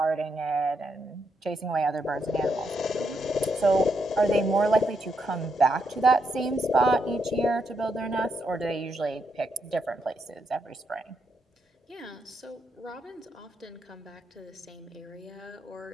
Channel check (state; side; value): normal; both; correlation 0.80